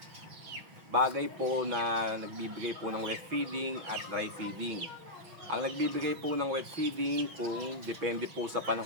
bagay po na nagbibigay po ng wet feeding at dry feeding. Ang nagbibigay po ng wet feeding kung depende po sa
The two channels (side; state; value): left; late; 6.1 ms